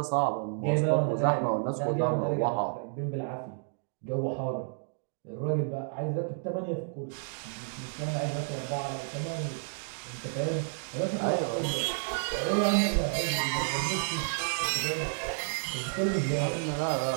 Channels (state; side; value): silent; left; digital silence